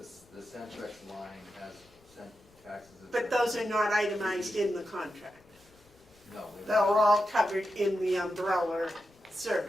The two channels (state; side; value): noise; left; rumble, 29 dB below the sound